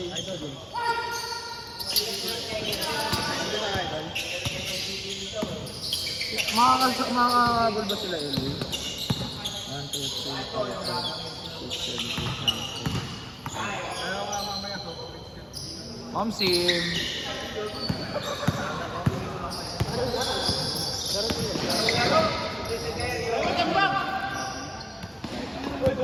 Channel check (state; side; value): identical; both; correlation 1.00